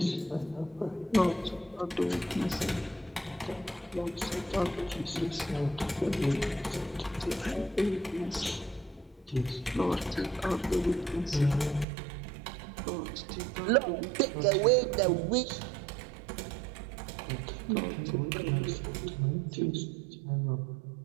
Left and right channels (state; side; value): drops out; left; at 11.9 s